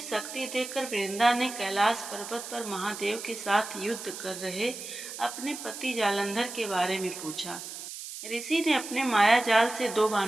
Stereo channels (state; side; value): noise; right; hiss, 10 dB below the sound